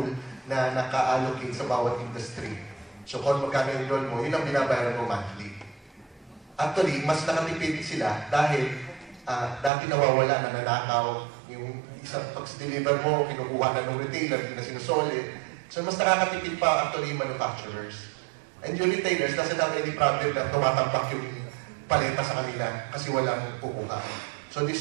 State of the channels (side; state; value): left; drops out; at 9.7 s